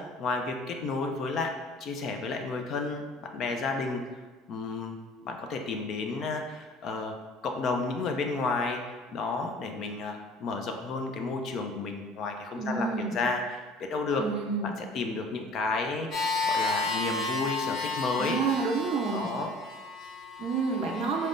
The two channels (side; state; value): both; normal; correlation 0.48